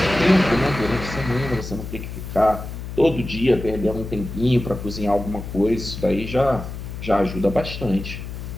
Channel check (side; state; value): left; noise; hum, 8 dB below the sound